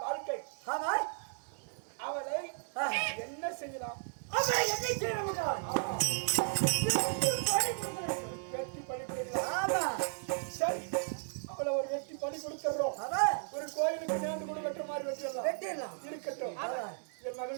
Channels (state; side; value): silent; left; digital silence